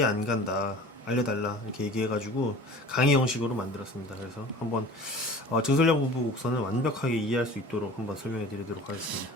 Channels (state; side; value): normal; both; correlation 0.42